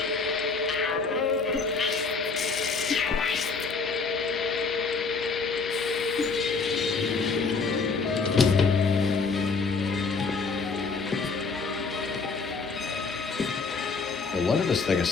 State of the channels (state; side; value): quieter; right; 4.6 dB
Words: No wonder this thing is